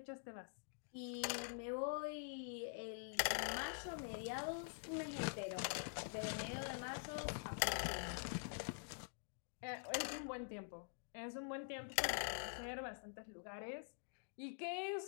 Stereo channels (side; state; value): right; silent; digital silence